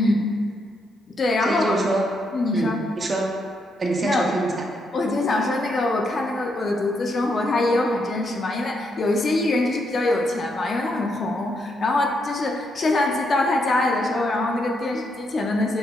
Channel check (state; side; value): normal; both; correlation 0.78